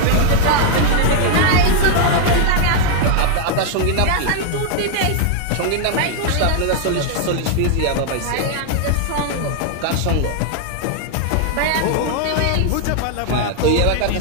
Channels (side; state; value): both; different; correlation 0.00